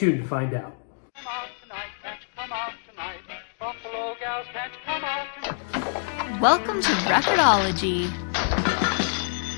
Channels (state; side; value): silent; right; 61 dB below the other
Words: to find out. Welcome to Record-ology.